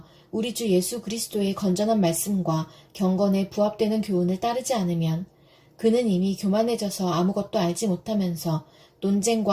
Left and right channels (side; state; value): both; identical; correlation 1.00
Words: 우리 주 예수 그리스도의 건전한 말씀과 경건에 부합되는 교훈을 따르지 않으면 그는 이미 교만해져서 아무것도 알지 못하면서